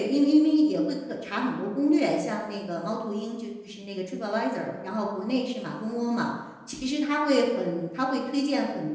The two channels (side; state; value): both; identical; correlation 1.00